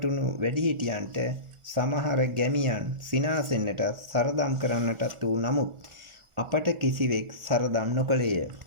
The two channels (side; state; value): left; late; 1.4 ms